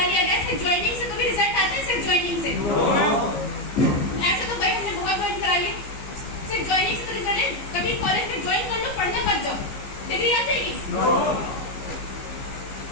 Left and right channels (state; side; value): late; right; 15 ms